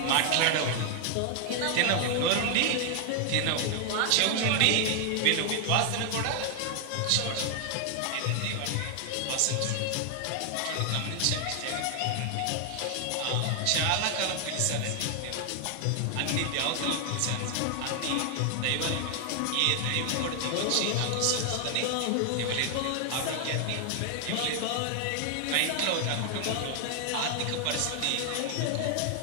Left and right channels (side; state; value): both; different; correlation 0.00